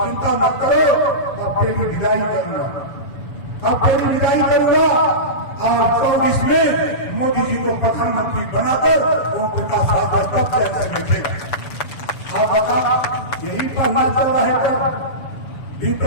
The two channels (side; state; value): right; late; 6.9 ms